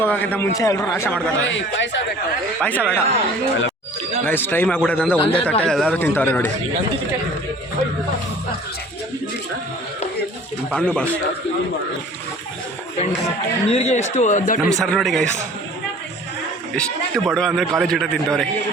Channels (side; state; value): both; normal; correlation 0.48